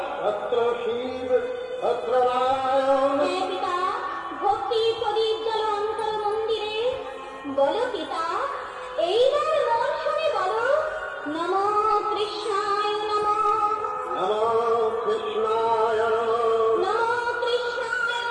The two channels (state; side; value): identical; both; correlation 1.00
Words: তত্র শিব তত্র নারায়ণ। পিতা, ভক্তি প্রদীপ জ্বল অন্তর মন্দিরে, বলো পিতা এইবার মন শুনে বলো, নমো কৃষ্ণায় নমঃ, নমো কৃষ্ণায় নমঃ, নমো কৃষ্ণায়